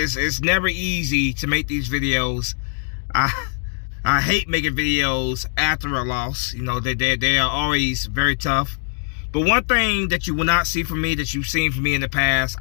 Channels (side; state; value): right; silent; 65 dB below the other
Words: never easy to make these videos. I hate making videos after a loss. You know, they are always very tough. But one thing that you will not see from me, that you've seen from me in the past,